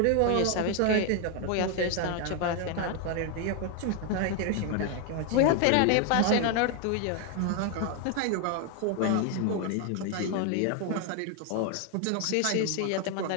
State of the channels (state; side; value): different; both; correlation 0.01